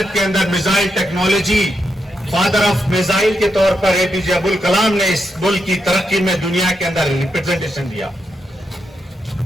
के अंदर missile technology, father of missile के तौर पर एपीजे अब्दुल कलाम ने इस मुल्क की तरक्की में दुनिया के अंदर रिप्रेजेंटेशन दिया।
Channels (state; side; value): normal; both; correlation 0.83